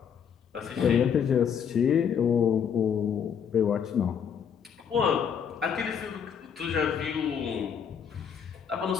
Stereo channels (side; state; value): right; quieter; 7.6 dB